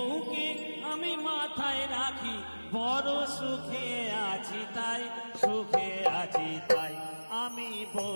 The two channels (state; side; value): inverted; both; correlation -1.00